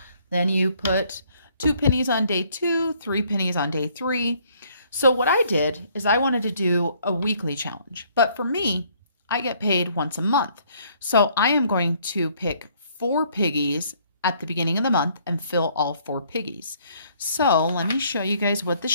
Then you put 2 pennies on day 2, 3 pennies on day 3. So what I did is I wanted to do a weekly challenge. But for me, I get paid once a month. So I am going to pick 4 piggies at the beginning of the month and fill all 4 piggies. So let me show you guys what the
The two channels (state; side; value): inverted; both; correlation -0.63